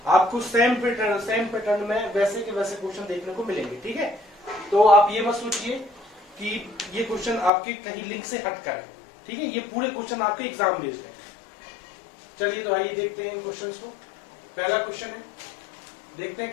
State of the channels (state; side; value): drops out; right; at 7.5 s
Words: आपको सेम पैटर्न में वैसे के वैसे क्वेश्चन देखने को मिलेंगे। ठीक है, तो आप ये मत सोचिए कि ये क्वेश्चन आपके कहीं लिंक से हट कर है। ठीक है, ये पूरे क्वेश्चन आपके एग्जाम बेस्ड है। चलिए तो आइए देखते हैं इन क्वेश्चंस को। पहला क्वेश्चन है, देखते हैं